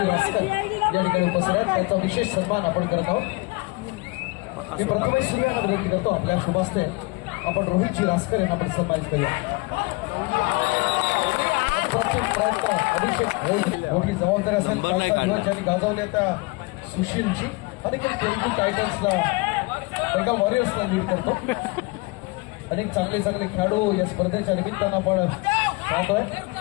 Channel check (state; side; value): quieter; right; 25.7 dB